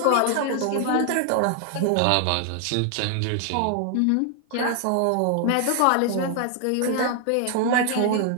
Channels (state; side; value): different; both; correlation 0.00